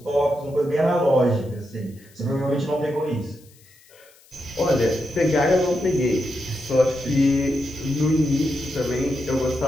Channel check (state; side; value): noise; left; hiss, 28 dB below the sound